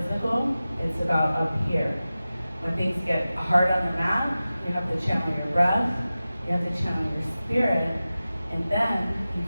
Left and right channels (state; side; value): inverted; both; correlation -0.95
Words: it's about up here. When things get hard on the mat, you have to channel your breath, you have to channel your spirit, and then you